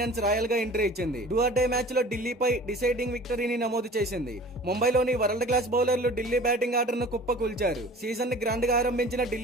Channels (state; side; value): normal; both; correlation 0.44